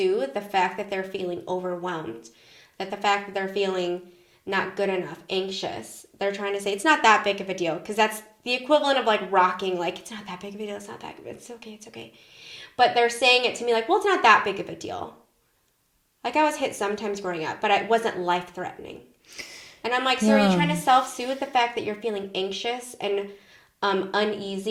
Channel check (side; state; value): both; identical; correlation 1.00